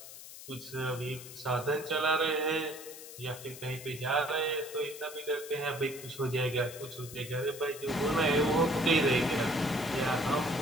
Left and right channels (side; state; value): left; noise; hiss, 14 dB below the sound